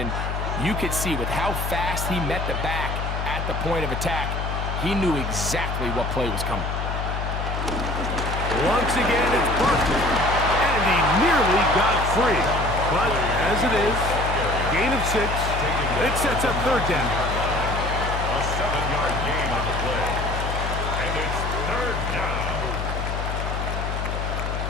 you could see with how fast he met the back at the point of attack, he knew exactly what play was coming. Once again, it's Barkley. And he nearly got free. But as it is, gain of 6. It sets up third down. A 7-yard gain on the play. And it's third down.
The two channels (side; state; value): left; noise; hum, 3 dB below the sound